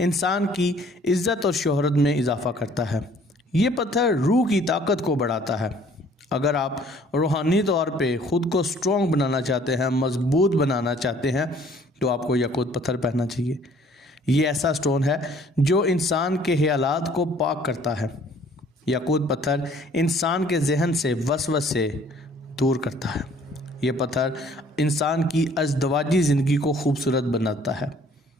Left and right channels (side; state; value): both; normal; correlation 0.57